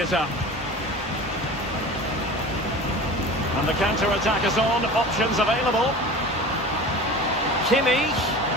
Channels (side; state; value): both; normal; correlation 0.36